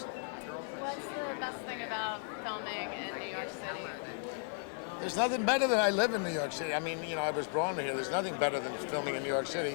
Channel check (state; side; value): silent; right; 54 dB below the other